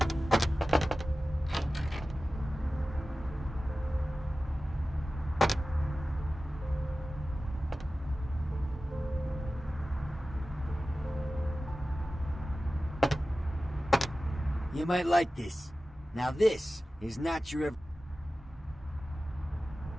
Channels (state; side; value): normal; both; correlation 0.95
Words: You might like this. Now this is not your...